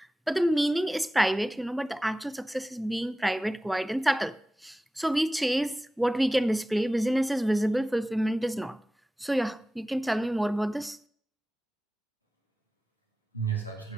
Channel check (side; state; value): both; normal; correlation 0.97